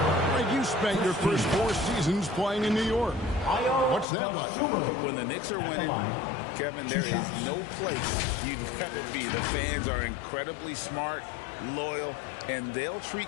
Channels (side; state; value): right; drops out; at 4.0 s